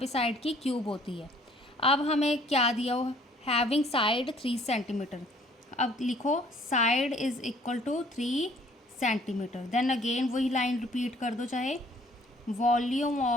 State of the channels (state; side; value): normal; both; correlation 0.58